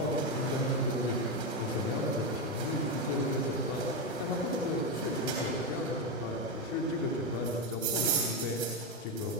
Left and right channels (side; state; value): both; normal; correlation 0.10